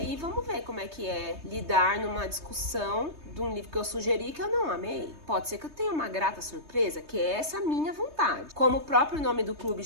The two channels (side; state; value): left; late; 3.2 ms